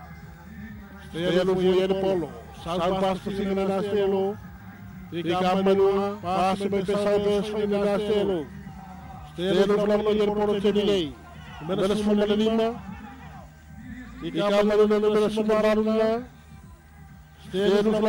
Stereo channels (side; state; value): both; identical; correlation 1.00